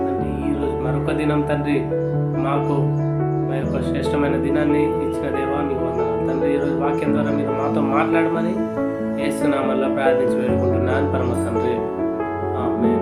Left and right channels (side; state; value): both; identical; correlation 1.00